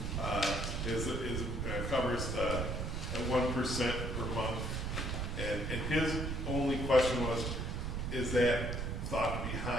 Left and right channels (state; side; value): noise; right; rumble, 2 dB below the sound